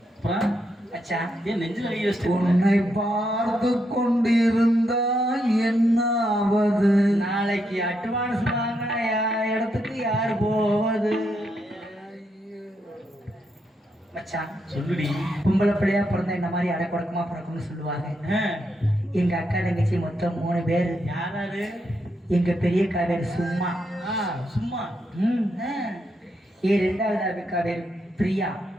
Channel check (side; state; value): both; normal; correlation 0.80